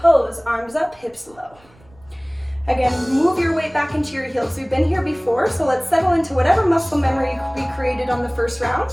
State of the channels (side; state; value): right; noise; rumble, 29 dB below the sound